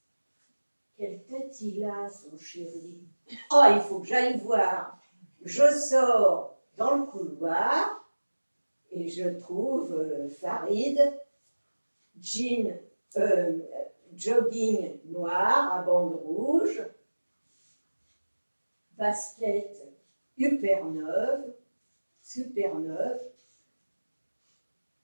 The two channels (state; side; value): inverted; both; correlation -1.00